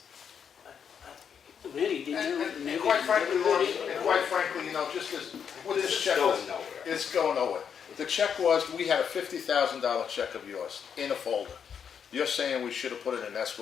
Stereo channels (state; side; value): quieter; right; 7.5 dB